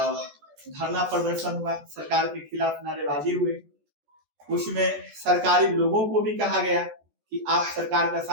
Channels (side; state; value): left; late; 14 ms